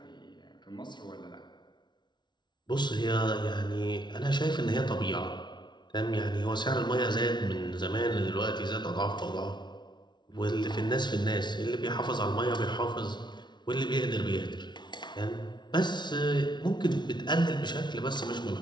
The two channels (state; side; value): late; right; 0.21 ms